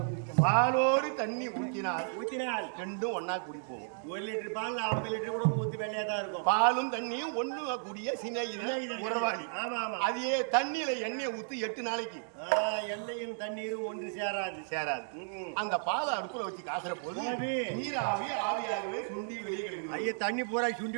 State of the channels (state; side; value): silent; left; digital silence